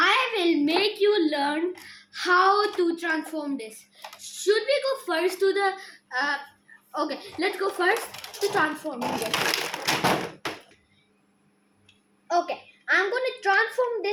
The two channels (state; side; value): identical; both; correlation 1.00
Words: will make you learn how to transform this. Should we go first to the okay, let's go first to transforming this. Okay, I'm going to transform